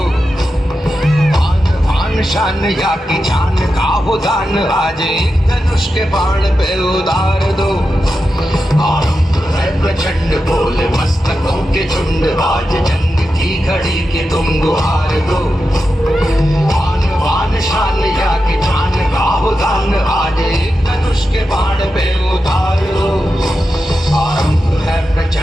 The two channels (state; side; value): normal; both; correlation 0.90